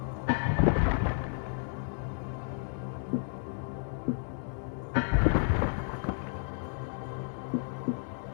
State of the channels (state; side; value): silent; right; 56 dB below the other